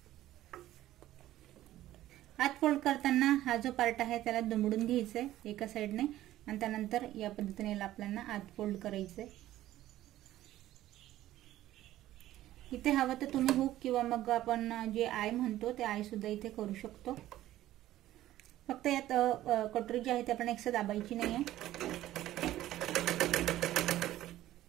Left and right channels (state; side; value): quieter; left; 14.3 dB